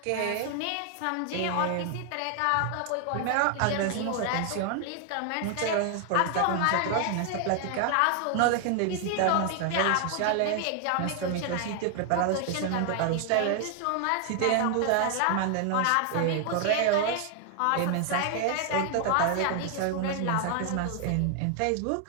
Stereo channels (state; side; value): different; both; correlation 0.00